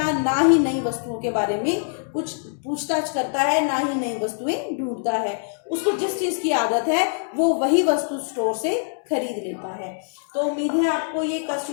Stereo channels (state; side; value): silent; right; digital silence